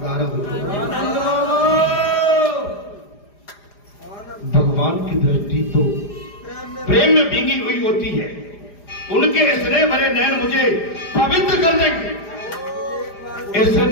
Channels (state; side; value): late; right; 4.9 ms